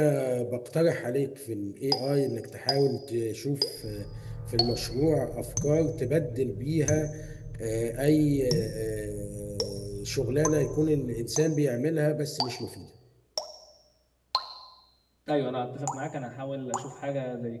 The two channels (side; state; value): both; identical; correlation 1.00